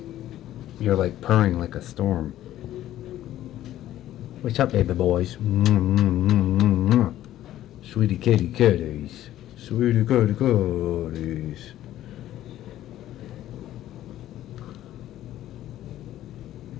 You're like purring like a storm. What's up, baby boys? Sweetie kitty kitties. Sweetie kitty kitties.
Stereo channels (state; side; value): quieter; right; 13.2 dB